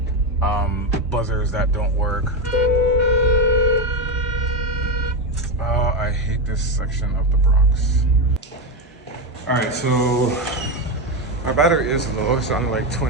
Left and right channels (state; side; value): normal; both; correlation 0.11